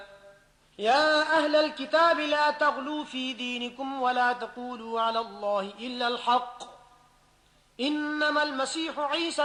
يا أهل الكتاب لا تغلوا في دينكم ولا تقولوا على الله إلا الحق إنما المسيح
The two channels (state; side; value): identical; both; correlation 1.00